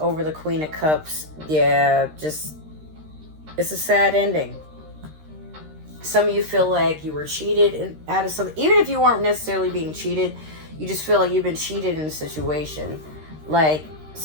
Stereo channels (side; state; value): left; late; 13 ms